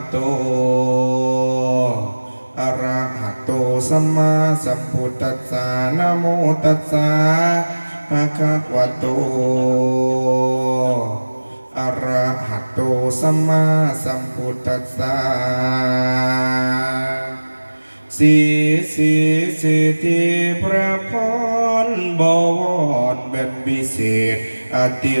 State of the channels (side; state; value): both; inverted; correlation -1.00